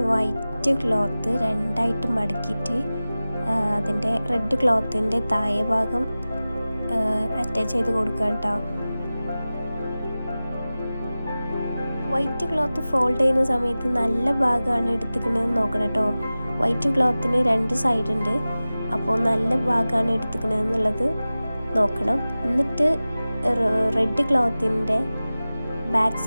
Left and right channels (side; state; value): both; inverted; correlation -0.97